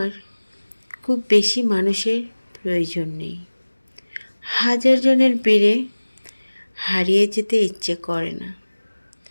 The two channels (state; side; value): inverted; both; correlation -1.00